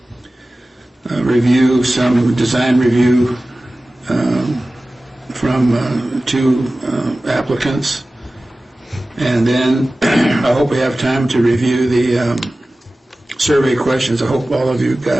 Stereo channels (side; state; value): both; normal; correlation 0.96